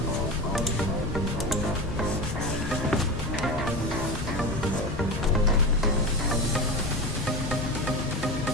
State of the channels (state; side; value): normal; both; correlation 0.24